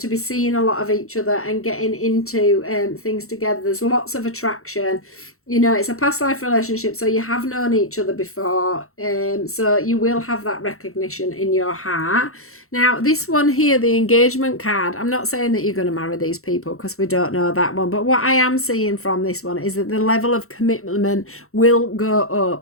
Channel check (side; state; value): right; late; 0.63 ms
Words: be seeing a lot of each other and getting into things together. There's lots of attraction. You know, it's a past life relationship, so you have known each other before. So you will have that recognition in your heart. Now, this one here, the engagement card, I'm not saying that you're going to marry these people, because we don't know that one. But what I am seeing from this one is that the level of commitment will go